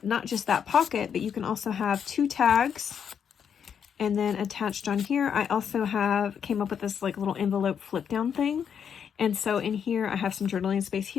not just that pocket, but you can also have 2 tags. And then attached on here, I also came up with this like little envelope flip down thing. And so in here, I have some journaling space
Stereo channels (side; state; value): right; quieter; 7.7 dB